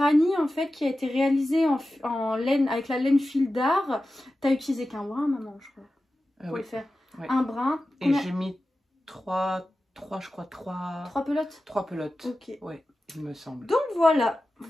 en fait qui a été réalisé en laine, avec la laine fil d'art. T'as utilisé qu'un brin, maman, je crois, pour le faire. Oui. Un brin. Et j'ai mis trois pelotes. 3 pelotes. Ok. Ouais, il me semble. Donc voilà.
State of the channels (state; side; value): normal; both; correlation 0.94